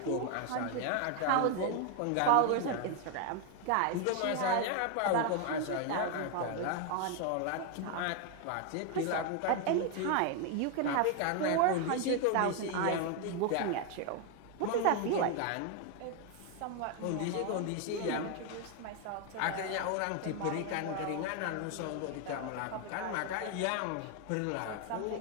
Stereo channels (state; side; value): different; both; correlation 0.01